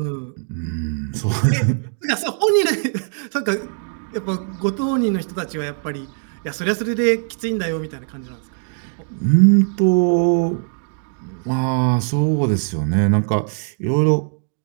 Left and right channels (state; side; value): silent; left; 62 dB below the other